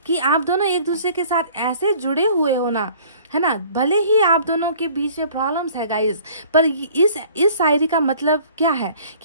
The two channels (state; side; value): inverted; both; correlation -0.52